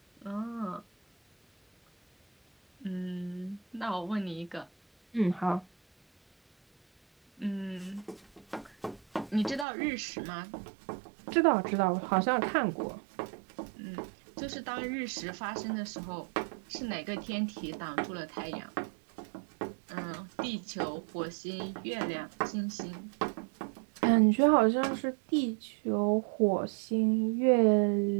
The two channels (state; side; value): drops out; left; at 9.7 s